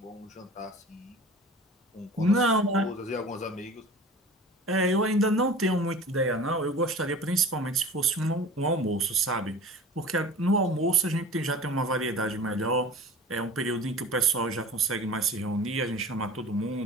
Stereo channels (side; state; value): both; normal; correlation 0.39